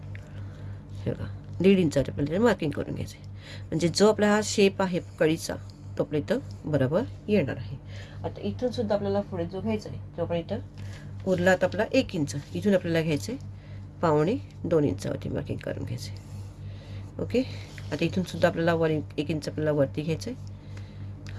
हे बघा 1.5 इंचावरती आपल्याला मार्किंग करून घ्यायचं आहे, म्हणजे जो आपला हा शेप आहे कळीचा तो आपल्या इथं बरोबर येणार आहे. आता इथून सुद्धा आपल्याला पुढे जो घ्यायचा आहे तो आपण इथं उरला आता आपला 1 इंच, इथून आपल्याला घ्यायचं आहे 2.25 इंचावरती मार्किंग करून घ्यायचं आहे. ओके, आता इथून सुद्धा आपल्याला 1 इंच आपल्याला वरती घ्यायचं आहे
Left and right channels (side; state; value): both; identical; correlation 1.00